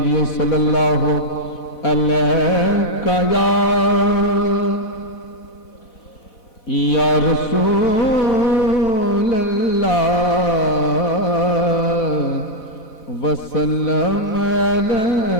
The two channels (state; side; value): late; right; 4.0 ms